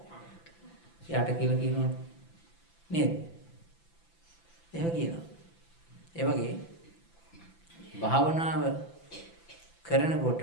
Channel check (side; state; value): right; late; 5.9 ms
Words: යට කියලා කියනවා නේද? එහෙම කියනවා. ඒ වගේ භාවනාව කරනකොට